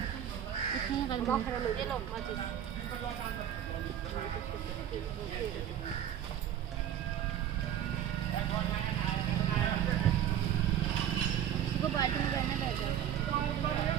इसको बाल्टी में रहना पड़ेगा।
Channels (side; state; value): left; quieter; 10.3 dB